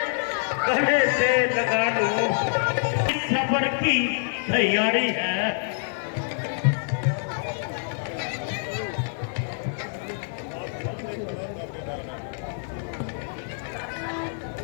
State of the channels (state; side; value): silent; right; 58 dB below the other